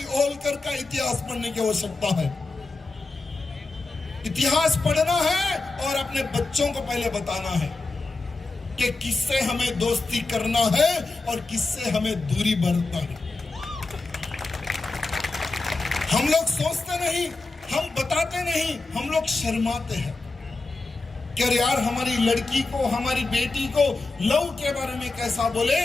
होलकर का इतिहास पढ़ने की आवश्यकता है। इतिहास पढ़ना है और अपने बच्चों को पहले बताना है कि किससे हमें दोस्ती करना है और किससे हमें दूरी बरतना है। हम लोग सोचते नहीं, हम बताते नहीं, हम लोग शर्माते हैं कि यार हमारी लड़की को, हमारी बेटी को लव के बारे में कैसा बोले,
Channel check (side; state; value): right; quieter; 3.5 dB